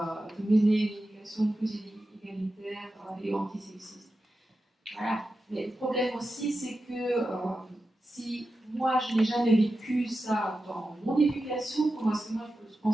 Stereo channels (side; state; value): both; normal; correlation 0.91